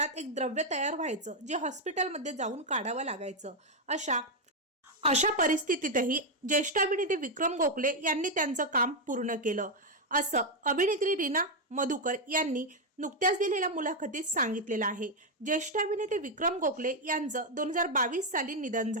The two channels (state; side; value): normal; both; correlation 0.03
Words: एक द्रव्य तयार व्हायचं जे हॉस्पिटलमध्ये जाऊन काढावं लागायचं। अशा परिस्थितीतही ज्येष्ठ अभिनेते विक्रम गोखले यांनी त्यांचं काम पूर्ण केलं, असं अभिनेत्री रीना मधुकर यांनी नुकत्याच दिलेल्या मुलाखतीत सांगितलेलं आहे। ज्येष्ठ अभिनेते विक्रम गोखले यांचं 2022 साली निधन